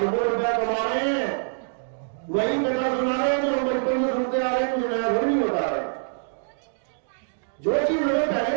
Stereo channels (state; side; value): silent; left; digital silence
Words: रुपया कमा रहे हैं। वही कथा सुना रहे हैं जो हम बचपन में सुनते आ रहे हैं, कुछ नया नहीं बता रहे। जो चीज हमें